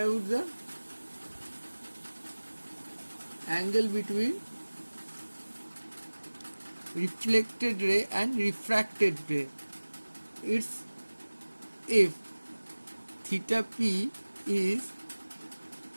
the angle between reflected ray and refracted ray. It's if theta p is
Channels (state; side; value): inverted; both; correlation -1.00